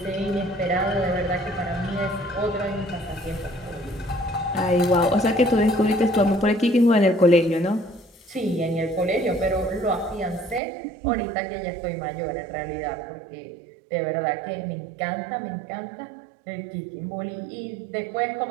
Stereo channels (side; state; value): left; drops out; at 10.6 s